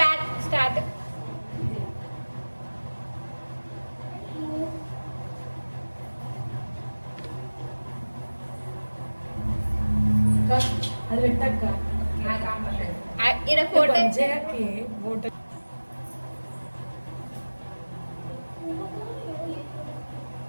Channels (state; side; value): inverted; both; correlation -1.00